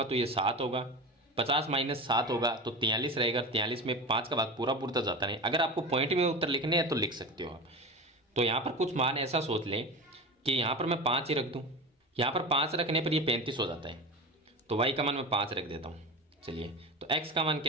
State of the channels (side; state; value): both; normal; correlation 0.28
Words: तो ये 7 होगा, 50 माइनस 7 होगा तो 43 रहेगा। 43 में 5 का भाग पूरा तो जाता नहीं। अगर आपको पॉइंट में उत्तर लिखने हैं तो लिख सकते हो आप। तो यहाँ पर कुछ मान ऐसा सोच लें कि यहाँ पर मैं 5 ही रख दूँ, यहाँ पर 5 रखने पर ये 35 हो जाता है, तो y का मान मैं 5 रख देता हूँ। चलिए, तो x का मान